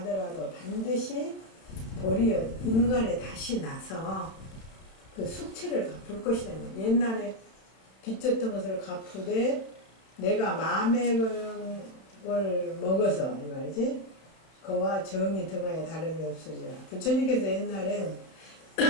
반드시 도리어 인간에 다시 나서 그 숙취를 갚을 것이다. 옛날에 빚졌던 것을 갚으되 내가 마음의 걸 먹어서 이 말이지 그와 정이 등하여 다름이 없으리라. 부처님께서 옛날에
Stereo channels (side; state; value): right; late; 31 ms